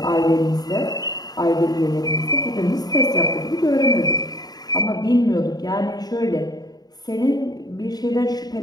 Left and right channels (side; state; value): right; late; 0.19 ms